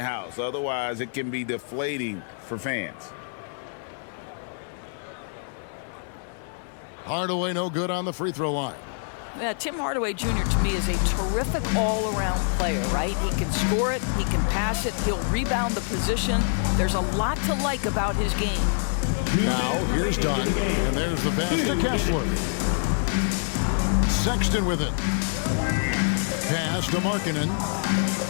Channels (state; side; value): silent; right; 61 dB below the other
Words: Otherwise, it can be deflating for fans. Hardaway no good on the free throw line. Yeah, Tim Hardaway Jr. to me is a terrific all-around player, right? He can score it, he can pass it, he'll rebound the position. There's a lot to like about his game. Now, here's Dunn, and there's the pass to Kessler. Sexton with it. Pass to Markkanen.